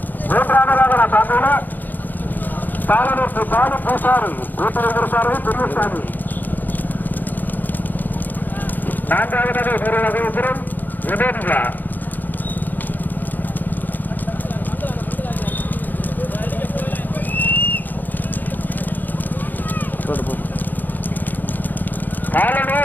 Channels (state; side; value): late; right; 0.086 ms